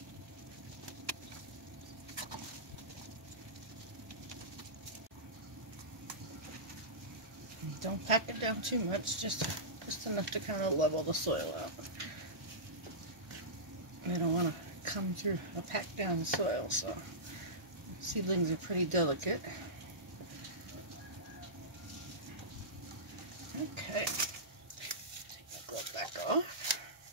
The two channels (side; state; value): left; late; 1.4 ms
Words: Don't pack it down too much, just enough to kind of level the soil out. They don't want to come through or pack down the soil, so seedlings are pretty delicate. Okay, take my glove back off.